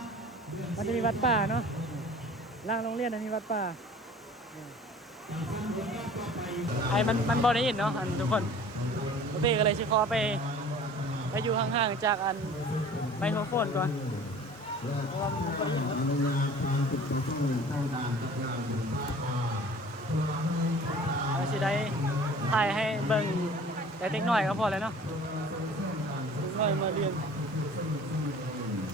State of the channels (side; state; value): both; normal; correlation 0.46